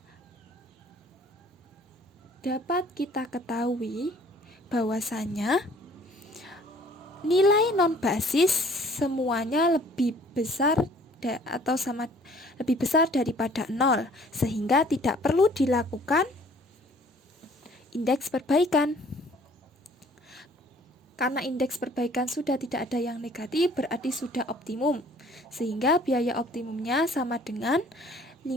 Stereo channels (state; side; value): normal; both; correlation 0.55